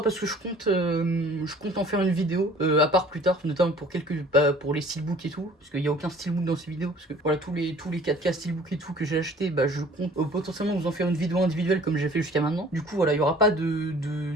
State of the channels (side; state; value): both; normal; correlation 0.51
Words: parce que je compte en faire une vidéo à part plus tard, notamment pour pour les steelbooks et tout, parce qu'il n'y a aucun steelbook dans ces vidéos, parce que voilà tous les 4K steelbook et tout que j'ai acheté, bah je compte potentiellement vous en faire une vidéo individuelle comme j'ai fait jusqu'à maintenant. Du coup voilà, il y aura pas de